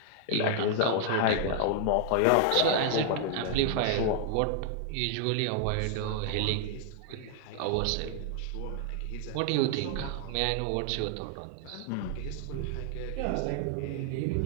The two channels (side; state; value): both; different; correlation 0.00